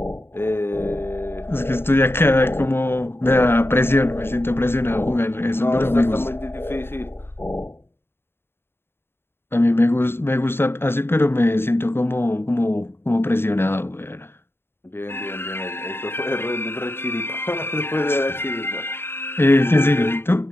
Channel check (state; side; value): late; right; 0.11 ms